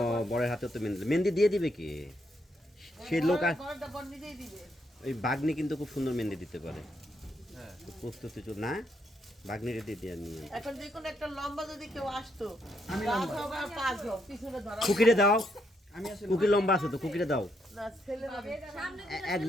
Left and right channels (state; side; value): normal; both; correlation 0.77